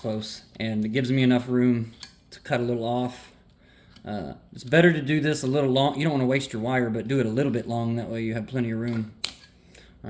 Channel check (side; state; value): both; identical; correlation 1.00